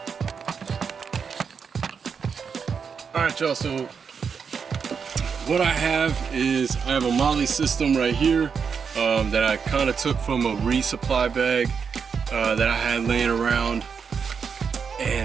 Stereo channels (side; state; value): left; quieter; 6.2 dB